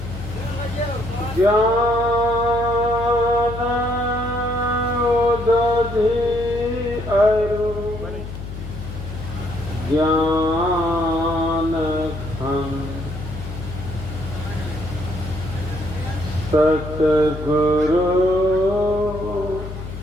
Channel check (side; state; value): left; noise; hum, 9 dB below the sound